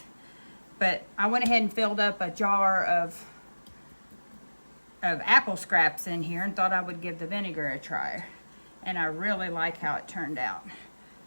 But I went ahead and filled up a jar of apple scraps in here and thought I would give the vinegar a try. And I really like how it turned out.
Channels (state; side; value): inverted; both; correlation -1.00